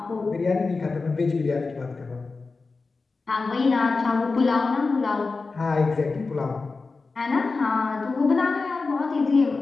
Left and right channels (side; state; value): right; quieter; 4.0 dB